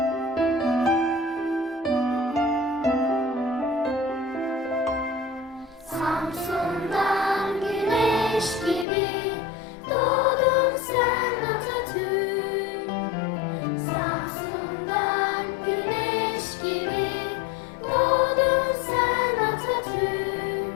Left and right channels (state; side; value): drops out; right; at 8.8 s